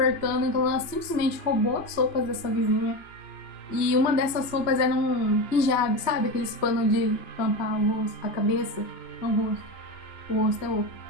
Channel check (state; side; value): late; right; 2.9 ms